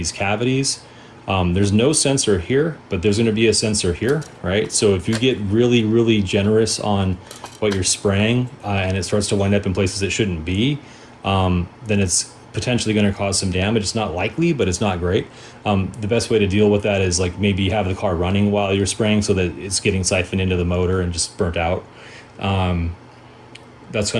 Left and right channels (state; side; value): identical; both; correlation 1.00